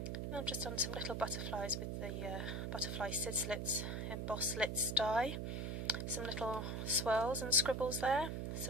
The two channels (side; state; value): right; noise; hum, 2 dB below the sound